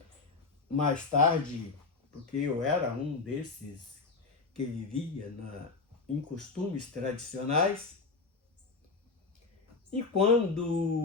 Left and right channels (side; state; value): right; quieter; 4.2 dB